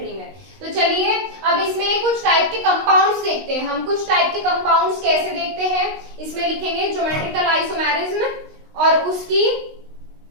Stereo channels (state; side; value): late; left; 19 ms